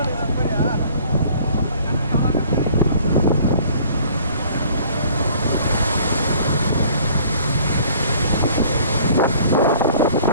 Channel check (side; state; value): both; inverted; correlation -0.54